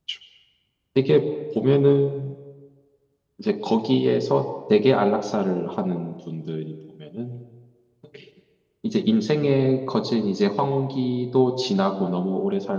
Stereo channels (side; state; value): both; identical; correlation 1.00